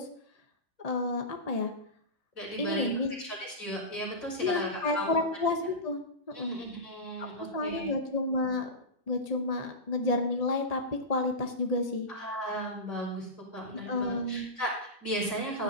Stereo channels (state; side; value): normal; both; correlation -0.17